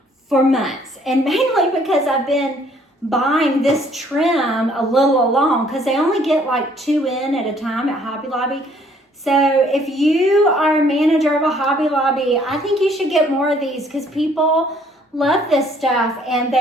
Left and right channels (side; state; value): both; normal; correlation 0.62